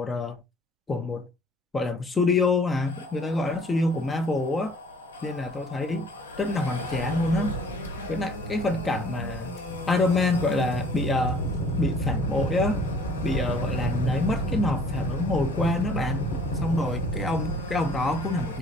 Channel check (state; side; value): normal; both; correlation 0.54